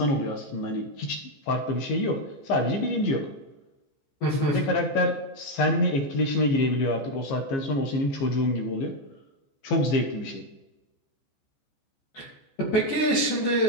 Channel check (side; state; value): right; late; 15 ms